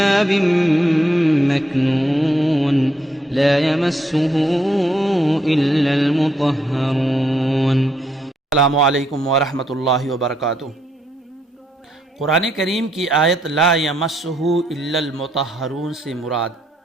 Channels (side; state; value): both; normal; correlation 0.75